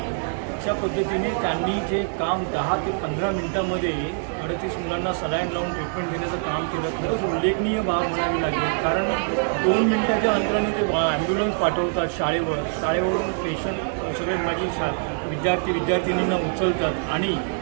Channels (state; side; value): silent; left; 62 dB below the other